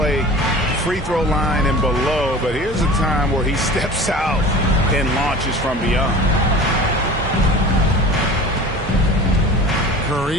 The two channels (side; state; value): both; normal; correlation 0.39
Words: free throw line and below, but here's a time where he steps out and launches from beyond.